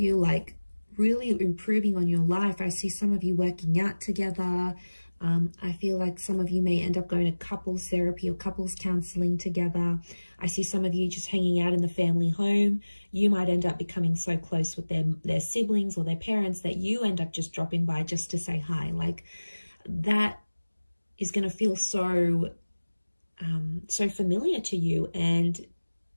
like really improving on your life. I see some of you working out together. I feel like some of you may end up going to couples therapy or couples counseling together. I see some of you just hanging out in the family home. You might end up becoming so close with their siblings or their parents that you end up just dropping by just to say hi. Like, that is going to feel so familiar to you, and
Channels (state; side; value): inverted; both; correlation -1.00